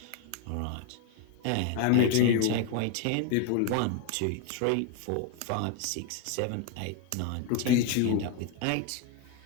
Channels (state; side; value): different; both; correlation 0.01